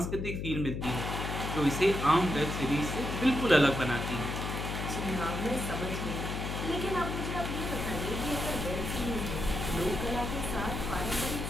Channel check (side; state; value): left; noise; hum, 3 dB below the sound